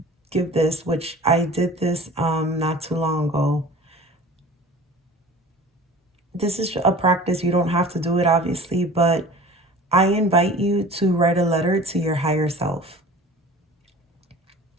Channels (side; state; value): both; normal; correlation 0.42